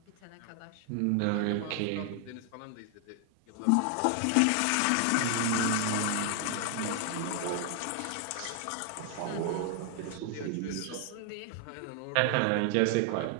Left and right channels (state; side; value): different; both; correlation 0.00